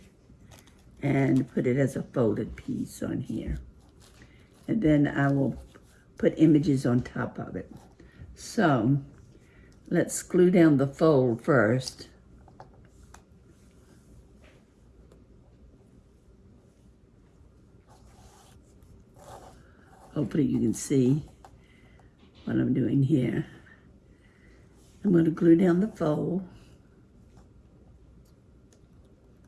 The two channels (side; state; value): both; identical; correlation 1.00